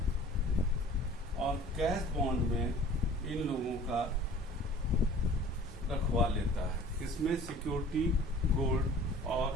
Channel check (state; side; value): normal; both; correlation 0.47